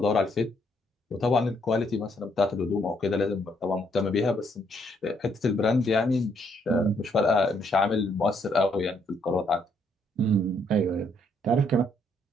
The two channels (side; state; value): both; normal; correlation 0.71